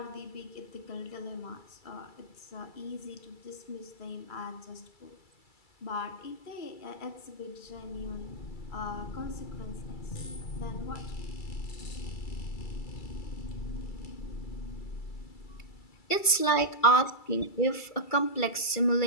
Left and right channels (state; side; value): late; right; 2.3 ms